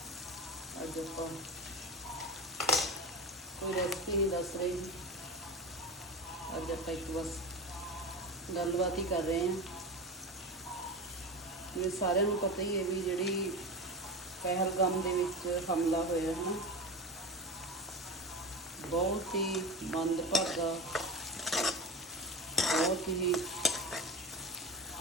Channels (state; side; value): normal; both; correlation 0.25